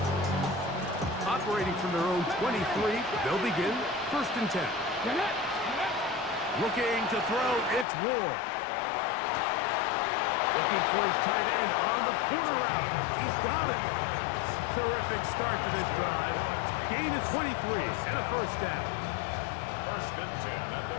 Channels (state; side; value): drops out; right; at 7.9 s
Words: Operating from their own 23, they'll begin 1st and 10. Looking to throw, it's Ward. Looking for his tight end on the corner route. He's got it. Terrific start to this drive. Gain of 23 and a 1st down. 1st and 10 at the